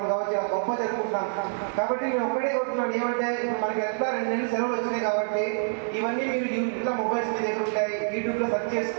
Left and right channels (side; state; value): left; silent; digital silence